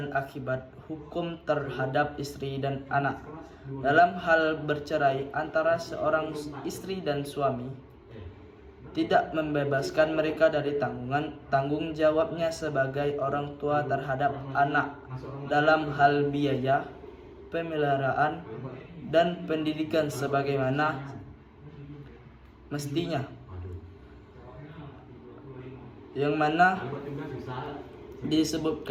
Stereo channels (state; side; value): identical; both; correlation 1.00